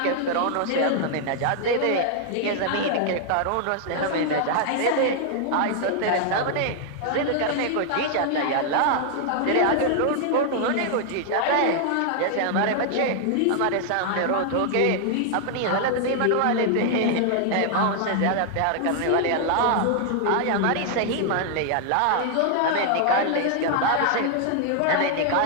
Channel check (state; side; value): different; both; correlation 0.00